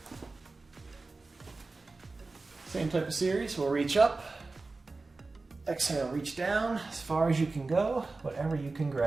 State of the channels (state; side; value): quieter; left; 3.6 dB